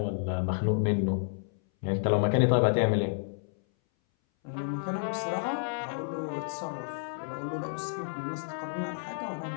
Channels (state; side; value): silent; right; 58 dB below the other